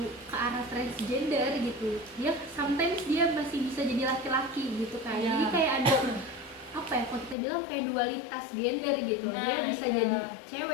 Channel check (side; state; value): right; drops out; at 7.4 s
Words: ke arah transgender gitu. Dia sometimes dia masih bisa jadi laki-laki gitu kan. Jadi kayak ada apa ya, kalau kita bilang kayak dualitas gender gitu. Dia bisa jadi